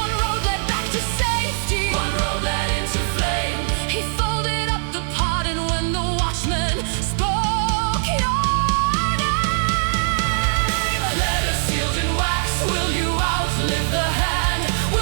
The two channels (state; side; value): silent; left; 60 dB below the other